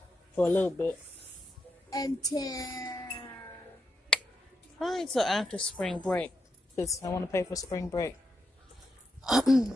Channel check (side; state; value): both; normal; correlation 0.83